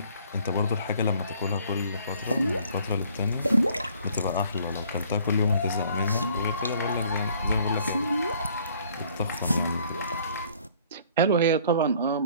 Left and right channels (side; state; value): both; inverted; correlation -0.58